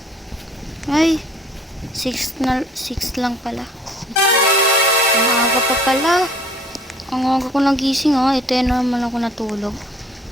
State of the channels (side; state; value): both; normal; correlation 0.55